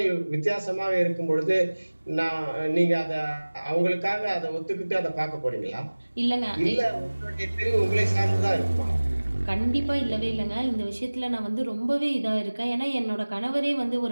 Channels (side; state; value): both; inverted; correlation -1.00